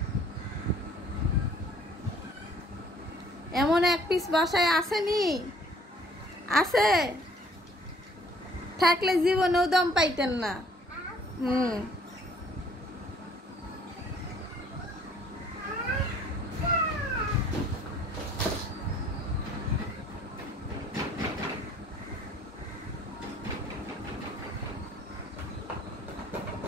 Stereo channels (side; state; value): both; normal; correlation 0.58